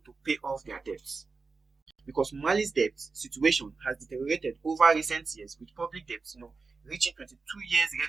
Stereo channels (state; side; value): quieter; left; 4.3 dB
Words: to pay off their debts. Because Mali's debt situation has deteriorated over recent years, with public debts, reaching 22 years